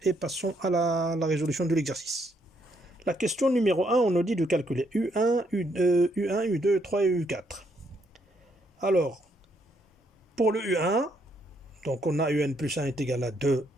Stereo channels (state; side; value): normal; both; correlation 0.73